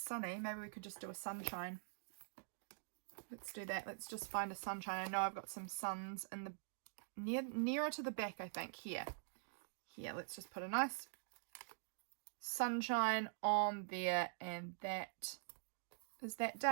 Maybe we could just do a sunshine. Let's do that. Let's just find a sunshine. I know I've got some suns in the nearer to the back, I think. Here, let's just put a nice sunshine on there, and that is that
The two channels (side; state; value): left; silent; digital silence